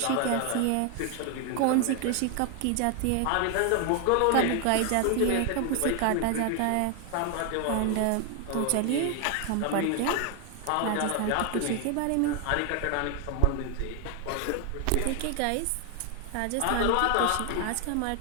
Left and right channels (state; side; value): different; both; correlation 0.00